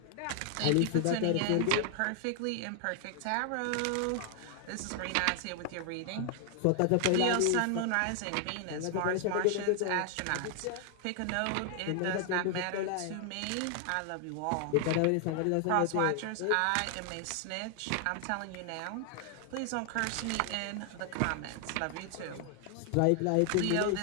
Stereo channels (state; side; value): different; both; correlation 0.00